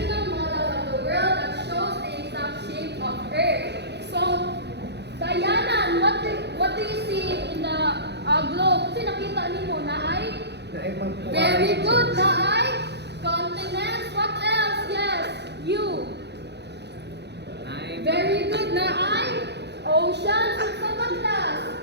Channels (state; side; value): late; left; 0.50 ms